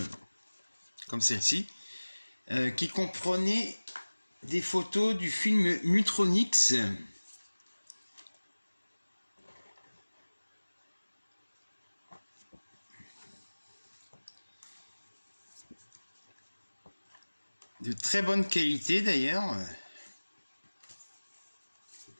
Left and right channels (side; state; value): both; inverted; correlation -1.00